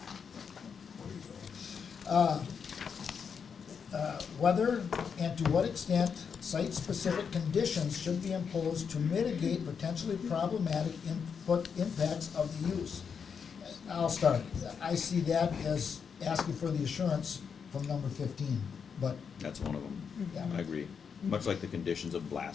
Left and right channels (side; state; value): right; quieter; 6.5 dB